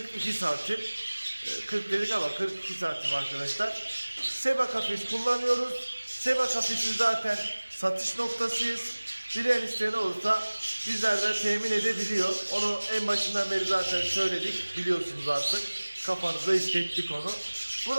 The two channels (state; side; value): inverted; both; correlation -1.00